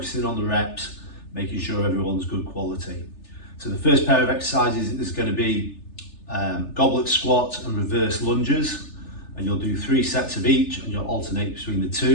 on the reps, making sure everyone's good quality. So the first pair of exercises is going to be goblet squat and reverse lunges, and you'll do 3 sets of each and you'll alternate between the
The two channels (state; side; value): late; right; 3.4 ms